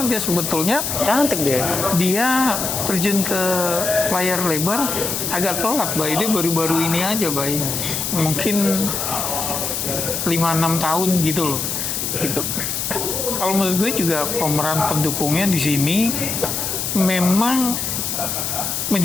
dia sebetulnya Cantik dia. dia terjun ke layar lebar agak telat, Bay. Dia baru-baru ini aja, Bay. Mungkin 5-6 tahun gitu loh. Gitu. Kalau menurut gue juga pemeran pendukungnya di sini memang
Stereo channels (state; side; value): noise; left; hiss, 2 dB below the sound